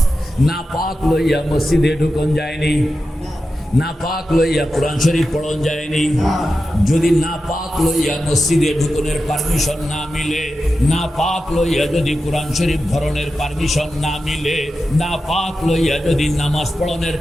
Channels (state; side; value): normal; both; correlation 0.91